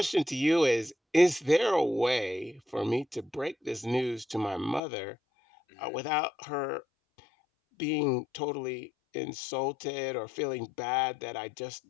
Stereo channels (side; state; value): right; drops out; at 4.8 s